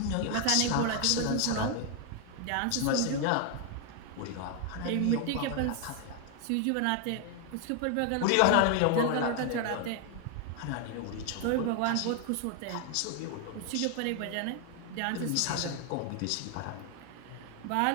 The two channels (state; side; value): different; both; correlation 0.01